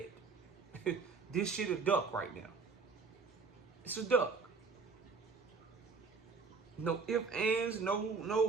This shit a duck right now. It's a duck. No ifs, ands,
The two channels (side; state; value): left; quieter; 4.7 dB